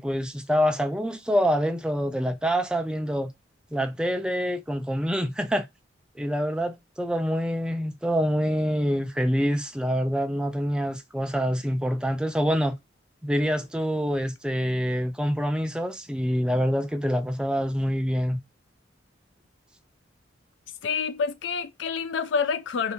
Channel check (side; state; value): both; normal; correlation 0.82